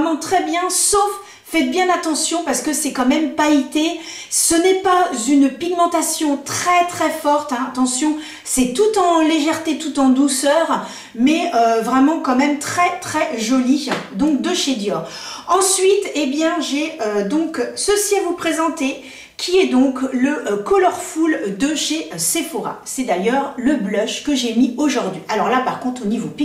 très bien, sauf... Faites bien attention parce que c'est quand même pailleté. Ce n'est pas une pigmentation très très forte. Hein. Attention, c'est tout en légèreté, tout en douceur. Mais vraiment quand même très très joli. Donc de chez Dior. Ensuite, eh bien j'ai donc ceci à vous présenter. Qui est donc le Colorful de chez Sephora. C'est d'ailleurs le blush que j'ai mis aujourd'hui. Alors là par contre au niveau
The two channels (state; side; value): identical; both; correlation 1.00